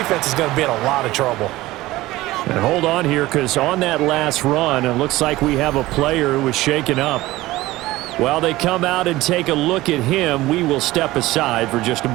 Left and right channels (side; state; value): left; quieter; 17.9 dB